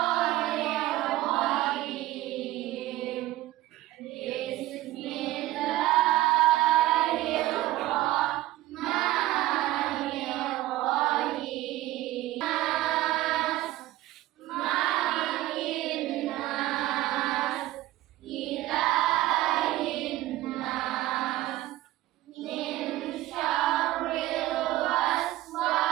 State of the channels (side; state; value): left; quieter; 16.2 dB